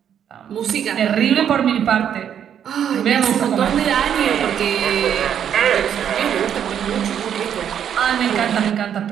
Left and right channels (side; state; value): left; quieter; 9.0 dB